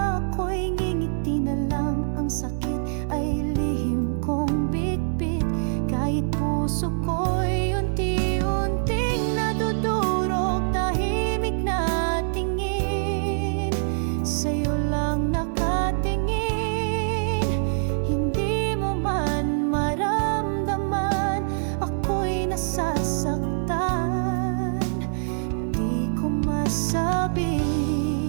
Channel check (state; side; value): silent; left; 62 dB below the other